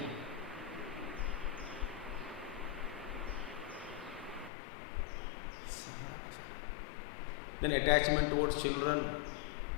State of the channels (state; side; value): drops out; right; at 4.5 s